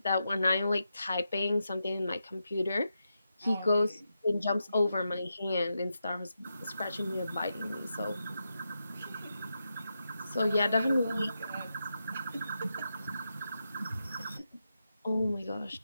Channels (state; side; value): inverted; both; correlation -0.87